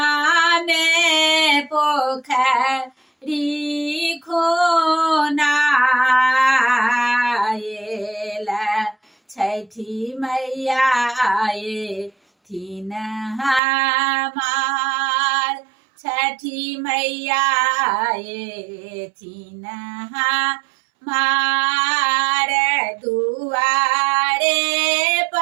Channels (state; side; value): drops out; left; at 13.6 s